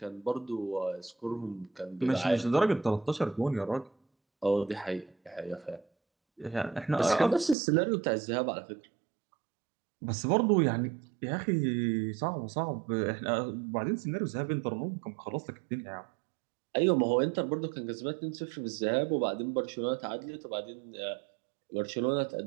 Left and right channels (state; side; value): drops out; left; at 7.6 s